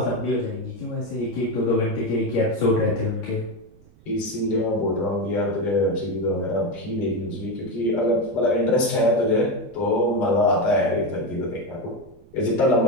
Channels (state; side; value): noise; right; rumble, 26 dB below the sound